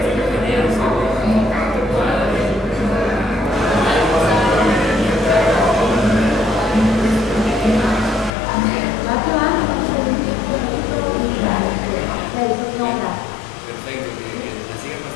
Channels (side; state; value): right; drops out; at 8.3 s